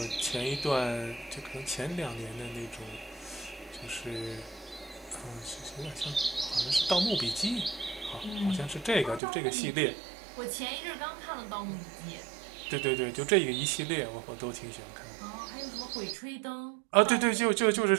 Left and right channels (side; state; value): left; drops out; at 9.2 s